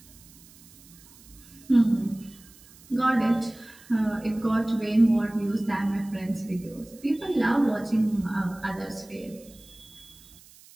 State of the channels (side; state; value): right; noise; hiss, 24 dB below the sound